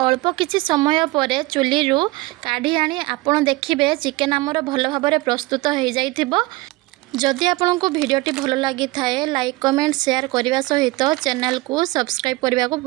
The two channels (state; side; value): quieter; left; 21.0 dB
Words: किछि समय पर चुली रू काढ़ी आनी आपण देखिबे चिकेन आमर भल भाबरे प्रस्तुत हो जाइथिबो। जदि आपंक भिडियोटी भल लगी थाए लाइक कमेंट शेयर करने सहित चैनल को सब्सक्राइब करने को